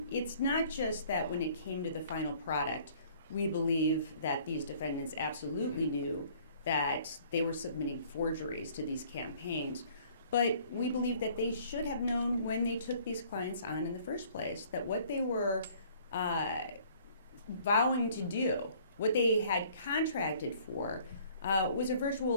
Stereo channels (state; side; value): inverted; both; correlation -0.56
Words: It's not just that when it came to the final product, we believe that these defendants absolutely knew that they were submitting forgeries to these campaigns, but we believe that they should have known when they took these clients on in the first place that what they were vowing to do, what they had contracted for, was a